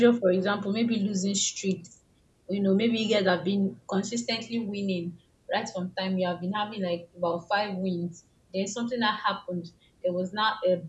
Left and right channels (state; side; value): identical; both; correlation 1.00